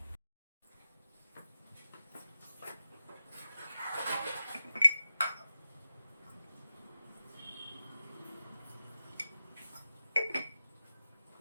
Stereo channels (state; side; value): inverted; both; correlation -0.93